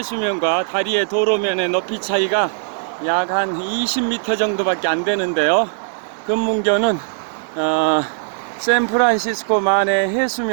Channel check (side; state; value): left; silent; digital silence